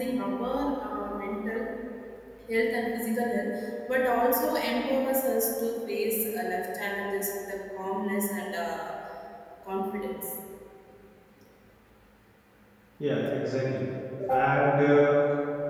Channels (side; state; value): both; identical; correlation 1.00